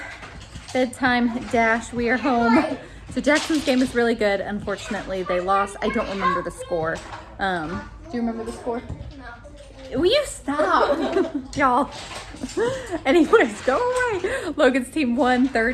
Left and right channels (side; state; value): both; identical; correlation 1.00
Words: bedtime dash. We are home So Jackson's game is really good. Unfortunately, they lost. I don't remember the score. Do you remember the score? No. Will you stop? Y'all. Anyways, go away. Logan's team won